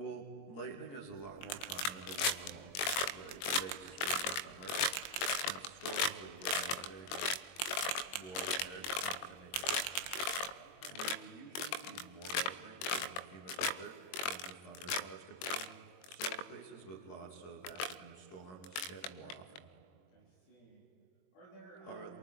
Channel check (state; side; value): late; right; 22 ms